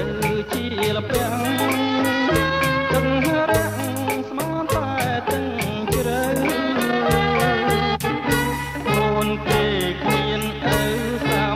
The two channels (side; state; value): both; identical; correlation 1.00